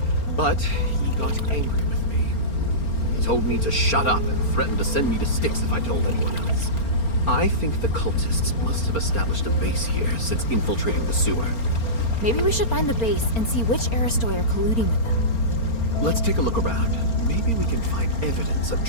But he got angry with me. He told me to shut up and threatened to send me to Styx if I told anyone else. I think the cultists must have established a base here since infiltrating the sewer. Maybe we should find the base and see which Aristoi are colluding with them. Let's take a look around. Maybe we can find evidence of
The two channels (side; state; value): right; late; 4.4 ms